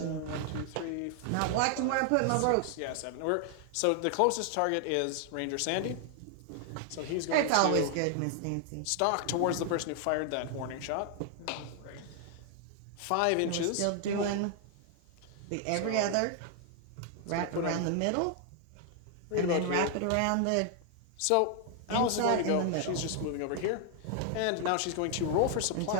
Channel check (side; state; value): both; different; correlation 0.00